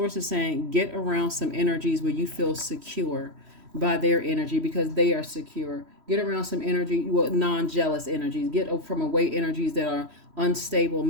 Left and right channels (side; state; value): left; late; 3.1 ms